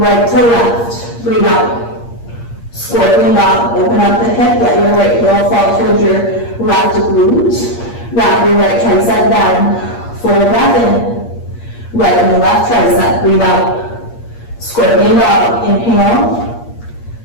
to left, breathe out. Scorpion dog, open up the hip, let your right heel fall towards your left glute. Wrap your right tricep down, full breath in. Right and left tricep, breathe out. Scorpion dog, inhale.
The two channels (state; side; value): late; right; 8.5 ms